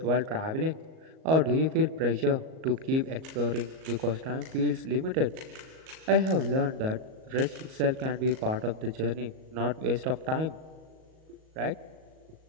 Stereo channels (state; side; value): late; left; 38 ms